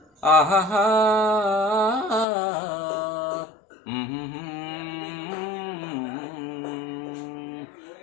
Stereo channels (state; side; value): drops out; right; at 2.2 s